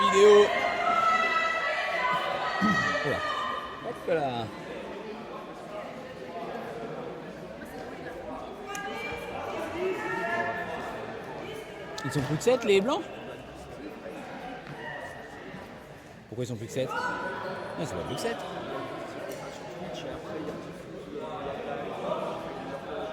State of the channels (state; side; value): identical; both; correlation 1.00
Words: vidéo. Voilà. Hop là. Ils sont plus que 7 les blancs? Pourquoi ils sont plus que 7? Non, c'est pas plus que 7.